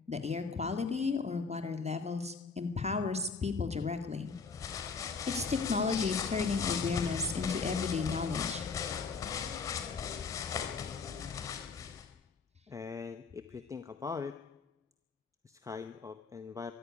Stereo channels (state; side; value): quieter; right; 4.9 dB